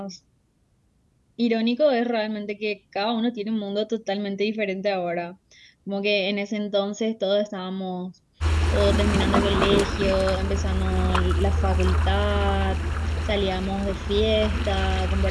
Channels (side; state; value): both; identical; correlation 1.00